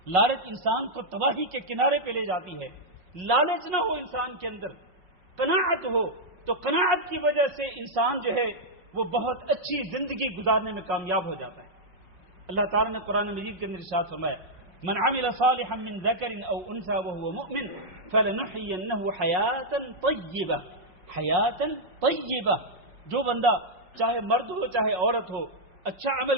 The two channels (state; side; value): late; left; 5.5 ms